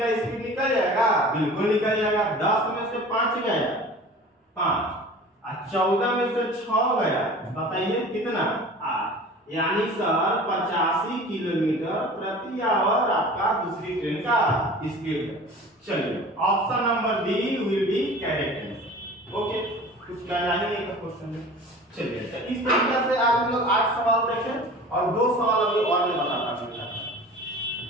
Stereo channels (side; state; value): both; normal; correlation 0.41